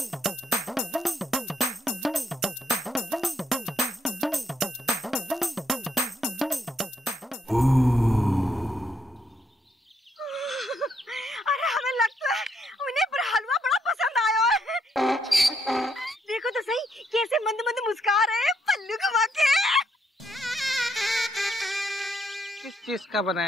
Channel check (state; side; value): normal; both; correlation 0.74